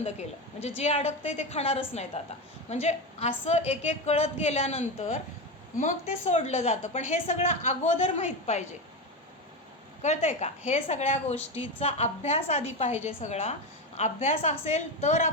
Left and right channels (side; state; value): both; normal; correlation 0.17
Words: केलं, म्हणजे जे अडकतंय ते खाणारच नाहीत आता. म्हणजे असं एक एक कळत गेल्यानंतर मग ते सोडलं जातं. पण हे सगळं अगोदर माहीत पाहिजे, कळतंय का? हे सगळ्या गोष्टीचा अभ्यास आधी पाहिजे. सगळा अभ्यास असेल तर